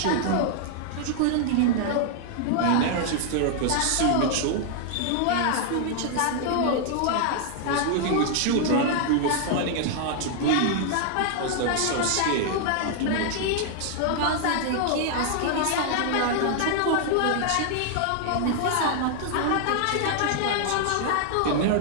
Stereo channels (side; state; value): both; different; correlation 0.00